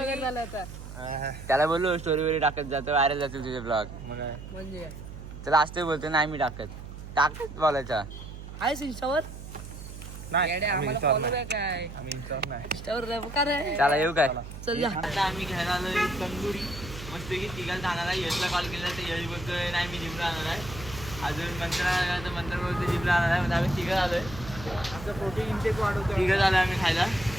बोललो स्टोरी वगैरे टाकत जातो, व्हायरल जातील तुझे ब्लॉग. म्हणजे चला असते बोलते नाही मी टाकत बोलायचा. आहेस इंस्टावर? चला येऊ काय. चल आता आम्ही घ्यायला आलोय तंदुरी मस्त की. तिघाला जाणार आहे. यशला कॉल केला तर यश बोलतोय नाही मी जिमला आणणार आहे. अजून मंत्र बोलतो जिमला आणणार आहे. म्हणजे आम्ही तिघं आलोय. आमचं प्रोटीन इंटेक वाढवतो. तिघं झालं आम्ही खायला.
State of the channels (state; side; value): noise; right; hum, 12 dB below the sound